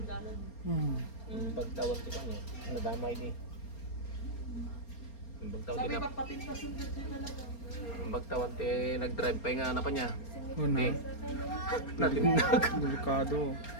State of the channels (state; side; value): late; right; 4.3 ms